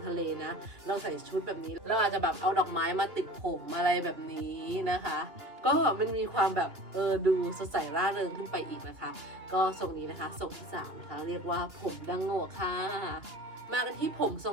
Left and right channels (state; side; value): late; left; 2.9 ms